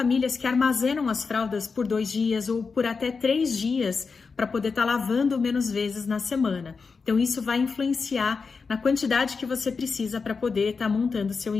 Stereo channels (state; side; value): quieter; right; 4.9 dB